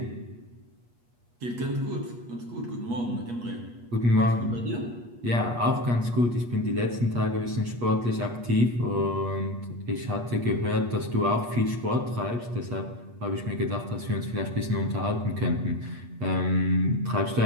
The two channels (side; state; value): left; late; 8.4 ms